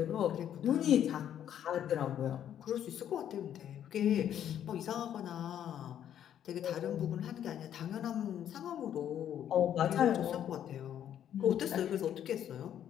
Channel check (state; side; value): quieter; right; 10.1 dB